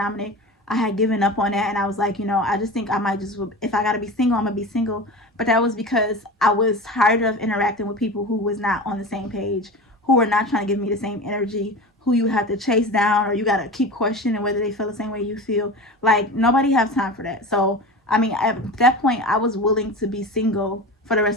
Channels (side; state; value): both; normal; correlation 0.30